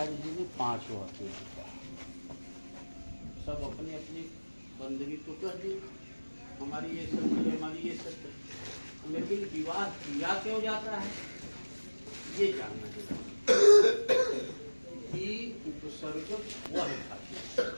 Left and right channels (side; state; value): both; inverted; correlation -1.00